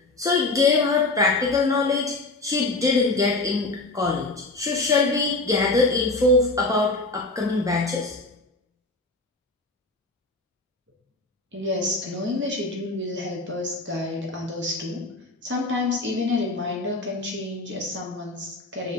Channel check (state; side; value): quieter; right; 3.1 dB